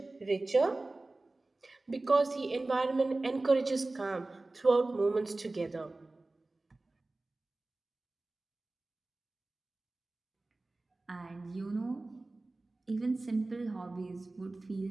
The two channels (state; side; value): quieter; left; 3.1 dB